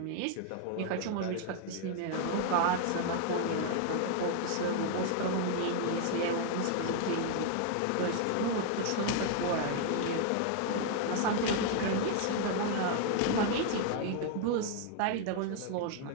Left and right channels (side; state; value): both; different; correlation 0.00